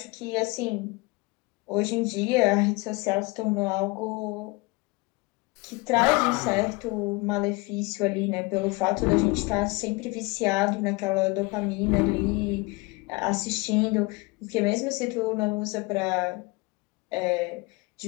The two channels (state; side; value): quieter; right; 25.3 dB